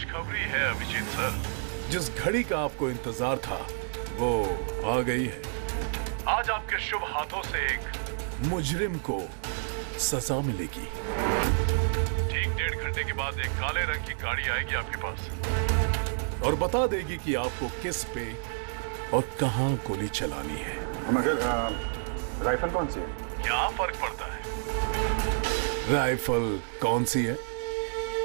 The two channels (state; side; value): silent; left; digital silence